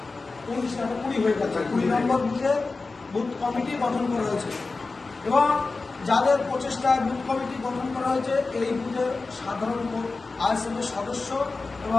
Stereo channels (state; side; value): quieter; right; 3.8 dB